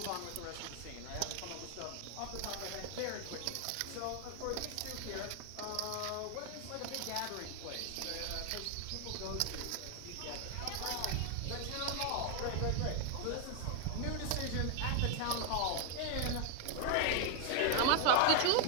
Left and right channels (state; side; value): different; both; correlation 0.00